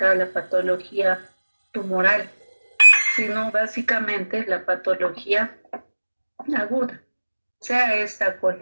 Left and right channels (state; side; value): inverted; both; correlation -1.00